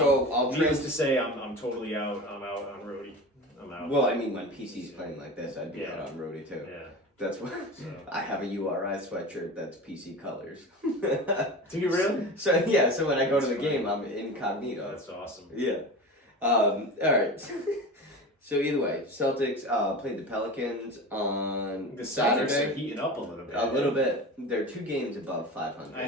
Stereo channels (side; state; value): both; normal; correlation 0.31